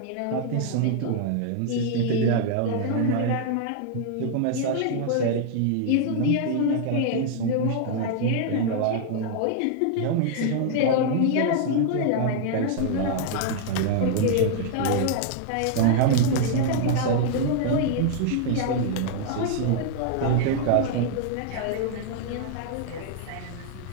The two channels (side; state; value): both; different; correlation 0.00